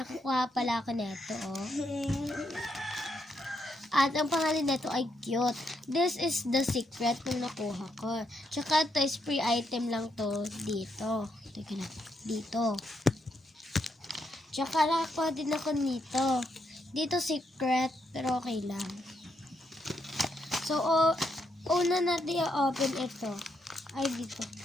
ako neto, oh. At ang pangalan nito ay cute. This is the secret nung nakuha ko. Tsaka ito is free item lang to dito. Teka na, dito. Tsaka nakakuha din ako nito. Dito secret, pero okay lang. So, una natin i-open ito. Ay, dito.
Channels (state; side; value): normal; both; correlation 0.78